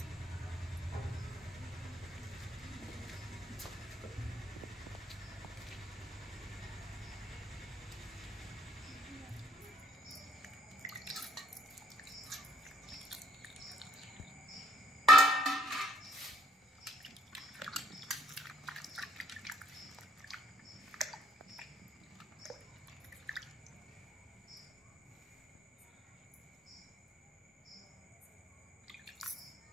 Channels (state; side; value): normal; both; correlation 0.67